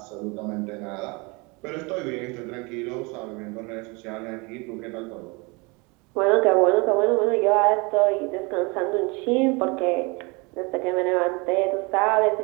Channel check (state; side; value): quieter; left; 28.0 dB